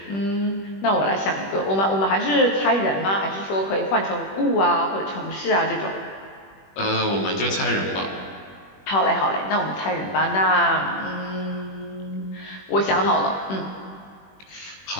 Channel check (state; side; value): late; right; 21 ms